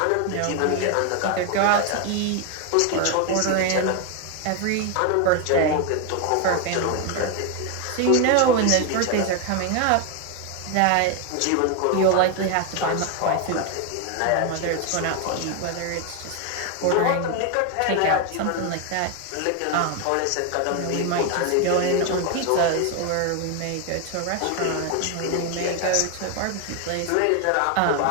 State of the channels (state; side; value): different; both; correlation 0.01